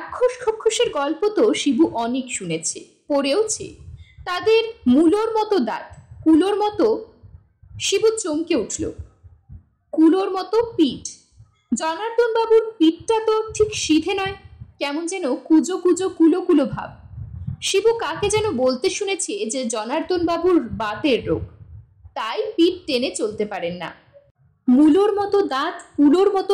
খক্ষসের গল্প তো শিবু অনেক শুনেছে, পড়েওছে। তাদের মূলোর মতো দাঁত, কুলোর মতো। শিবু চমকে উঠল। কুলোর মতো পিঠ। জনার্দন বাবুর পিঠটা তো ঠিক সিধে নয়, কেমন যেন কুজো কুজো কুলো কুলো ভাব। শিবু কাকে যেন বলতে শুনেছে যে জনার্দন বাবুর বাতের রোগ, তাই পিঠ টেনে চলতে পারেন না। মূলোর মতো দাঁত, কুলোর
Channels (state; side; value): identical; both; correlation 1.00